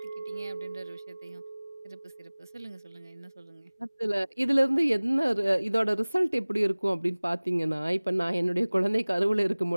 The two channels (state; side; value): inverted; both; correlation -1.00